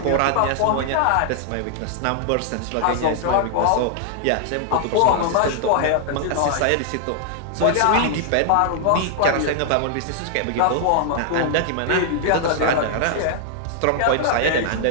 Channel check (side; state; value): both; different; correlation -0.01